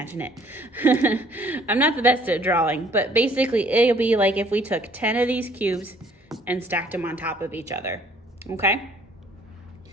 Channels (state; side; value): normal; both; correlation 0.60